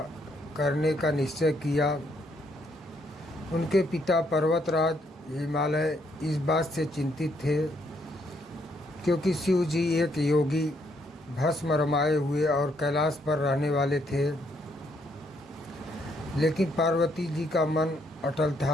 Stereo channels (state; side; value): normal; both; correlation 0.72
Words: करने का निश्चय किया। उनके पिता पर्वतराज हिमालय इस बात से चिंतित थे क्योंकि शिव जी एक योगी, भस्म रमाए हुए और कैलाश पर रहने वाले थे। लेकिन पार्वती जी का मन अटल